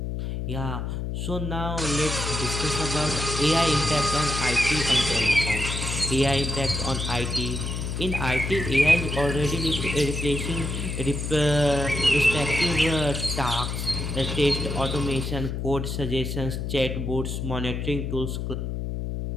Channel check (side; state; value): left; noise; hum, 3 dB below the sound